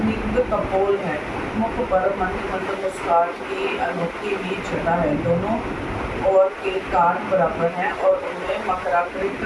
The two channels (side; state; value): both; identical; correlation 1.00